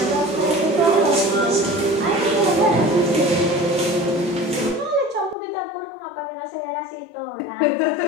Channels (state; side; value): drops out; right; at 5.4 s